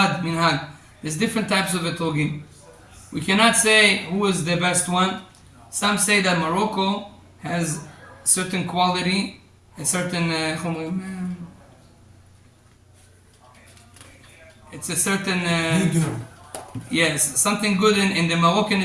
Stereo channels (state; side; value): identical; both; correlation 1.00